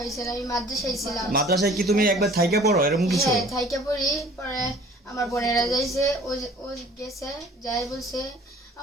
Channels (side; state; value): both; normal; correlation 0.50